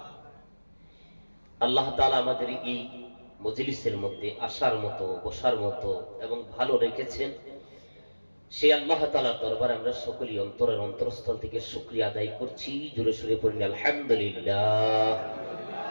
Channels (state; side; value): inverted; both; correlation -1.00